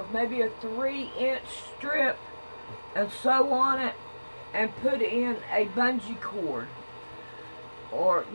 maybe a 3-inch strip and sew on it and put in a bungee cord, or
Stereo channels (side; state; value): both; inverted; correlation -1.00